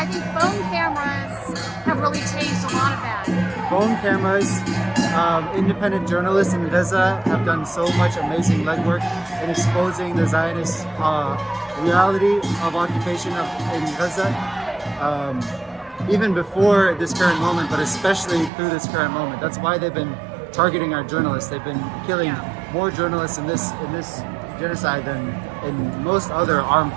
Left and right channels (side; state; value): left; drops out; at 18.5 s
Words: think phone cameras have really changed a lot of that. Phone cameras, independent journalists in Gaza have done so much amazing legwork in exposing the Zionist reality of occupation in Gaza. Even before this current moment, but especially through this current moment. That's why they've been targeting our journalists. They've been killing more journalists in this genocide than in most other armed